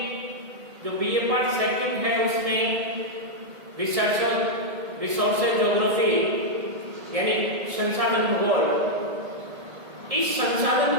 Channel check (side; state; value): left; late; 1.7 ms